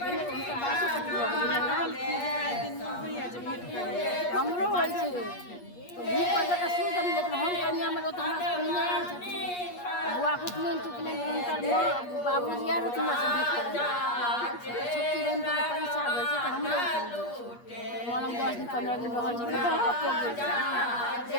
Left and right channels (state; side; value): late; right; 8.4 ms